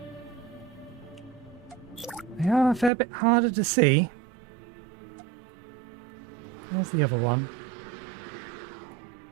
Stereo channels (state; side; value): drops out; left; at 2.9 s